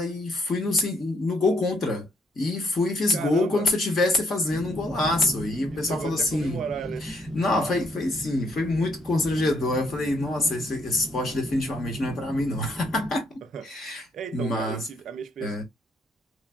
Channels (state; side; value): normal; both; correlation 0.71